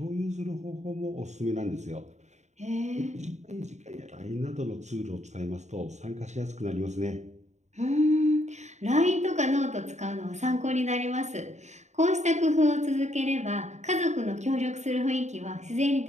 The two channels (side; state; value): left; late; 0.34 ms